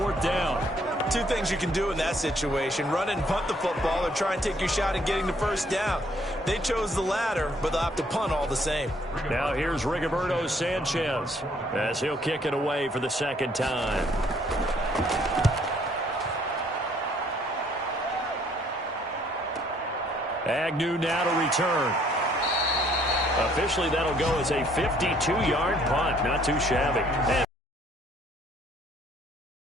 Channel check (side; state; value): both; normal; correlation 0.64